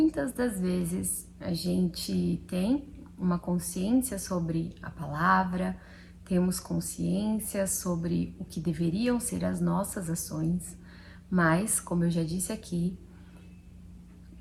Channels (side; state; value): both; identical; correlation 1.00